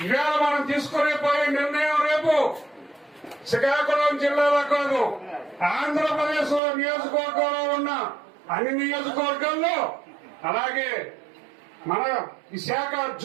ఇవాళ మనం తీసుకునే పోయే నిర్ణయం రేపు శ్రీకాకుళం జిల్లాలో కాదు, ఆంధ్రప్రదేశ్ నియోజకవర్గంలో ఉన్న అన్ని నియోజకవర్గాల్లో, అలాగే మన విశాఖ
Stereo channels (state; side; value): drops out; left; at 6.6 s